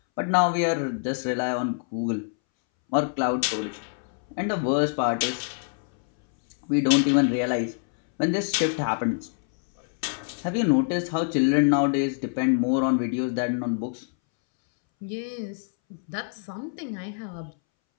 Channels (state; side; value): silent; right; 61 dB below the other